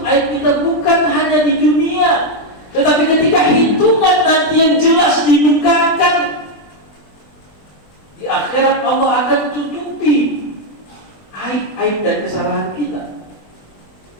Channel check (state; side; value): late; right; 20 ms